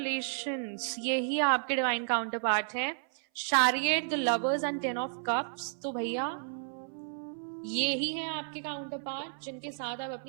यही आपके डिवाइन काउंटर पार्ट है, chariot, the lovers and 10 of cups. तो भैया ये ही है आपके काउंटर पार्ट जिनके साथ आप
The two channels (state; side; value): silent; left; 56 dB below the other